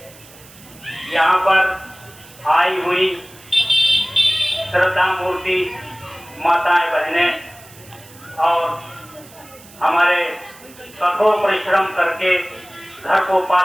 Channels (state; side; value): noise; right; hiss, 22 dB below the sound